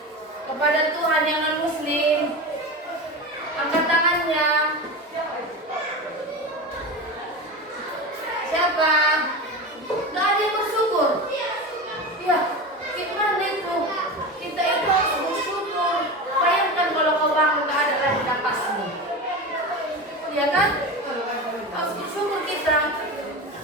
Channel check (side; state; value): both; normal; correlation 0.25